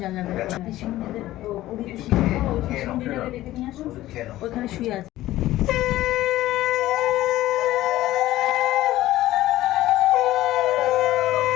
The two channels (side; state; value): right; quieter; 15.5 dB